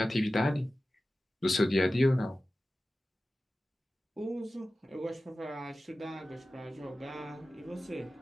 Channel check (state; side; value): normal; both; correlation 0.95